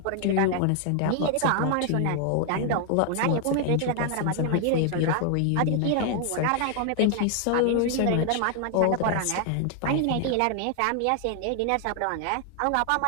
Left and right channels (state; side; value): different; both; correlation 0.00